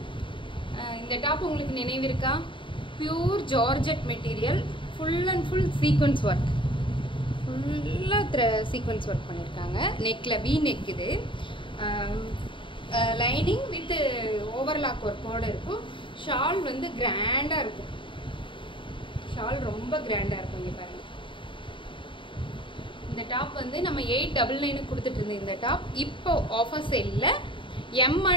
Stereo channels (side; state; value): right; late; 0.24 ms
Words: இந்த டாப் உங்களுக்கு நினைவு இருக்கா? Pure georgette material, full and full sequence work, ஃபுல்லாக சீக்வன்ஸ் ஒர்க் பண்ணியிருக்காங்க. நெக்கில் வி நெக், இது லைனிங் வித் ஓவர்லாக் ஒர்க்கோடு இருக்கும். ஷால் வந்து கிராண்டாக இருக்கும். ஷால் ரொம்ப கிராண்டாக இருக்கும். இங்கே பாருங்கள், இந்த டாப் வந்து நம்ம 899 கொடுத்துட்டு இருந்தோம். இந்த டாப் இப்போ ஆஃபர் சேலில்